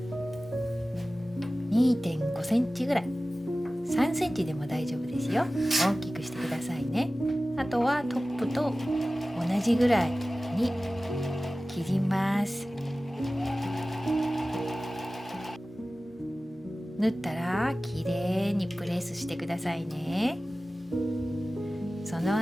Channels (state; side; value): normal; both; correlation 0.96